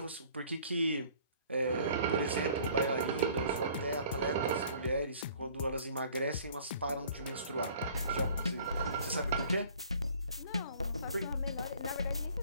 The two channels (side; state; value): both; inverted; correlation -0.53